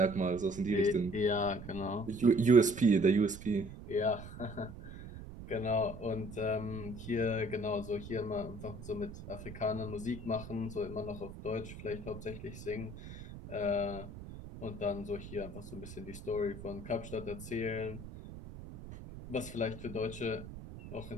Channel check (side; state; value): right; noise; rumble, 12 dB below the sound